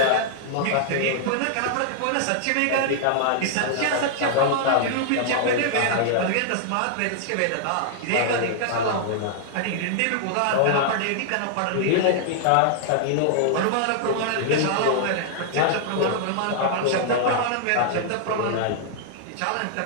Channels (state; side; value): different; both; correlation -0.01